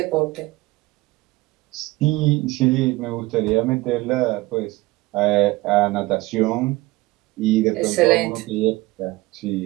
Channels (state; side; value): quieter; left; 20.2 dB